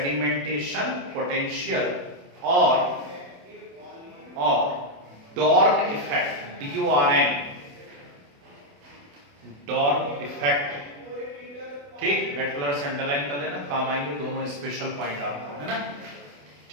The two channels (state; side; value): late; left; 28 ms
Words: potential or Dorn effect, DORN, Dorn effect। ठीक, रेड कलर से अंडरलाइन कर लेना, काम आएंगे दोनों स्पेशल पॉइंट आपको, है ना।